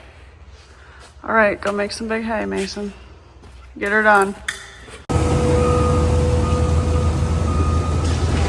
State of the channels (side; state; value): both; identical; correlation 1.00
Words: All right, go make some big hay, Mason. Get her done.